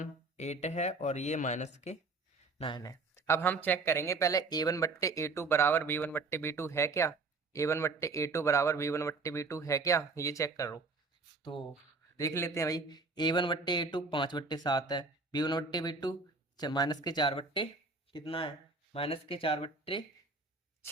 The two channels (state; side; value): quieter; left; 3.8 dB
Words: 8 है और ये -9 है। अब हम चेक करेंगे पहले A1/A2 बराबर B1/B2 है क्या, A1/A2 बराबर B1/B2 है क्या, ये चेक करो। तो देख लेते हैं भाई, A1/A2 5/7 है, B1/B2 -4 बट्टे कितना है,